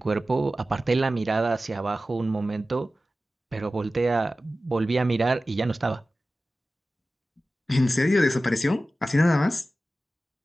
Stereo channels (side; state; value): both; normal; correlation 0.95